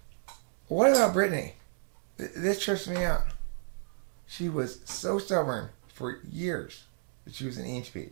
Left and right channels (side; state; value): left; silent; 56 dB below the other